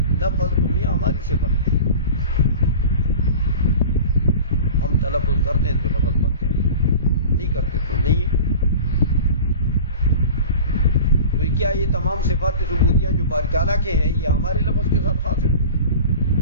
لفظ تمہیں ہماری صفت ہے، ہم تلفظ کرتے ہیں تو لفظ بنتے ہیں، نہیں کرتے تو نہیں۔ تو کیا یہ تمام صفات ثبوتیہ جو باری تعالیٰ کے ہیں یہ ہمارے لفظ کے ساتھ خاص ہے؟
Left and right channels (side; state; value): both; inverted; correlation -0.37